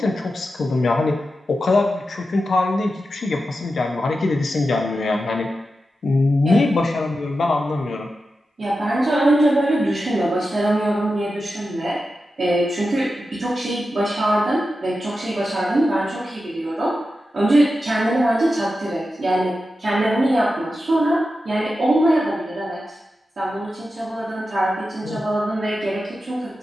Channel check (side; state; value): both; normal; correlation 0.91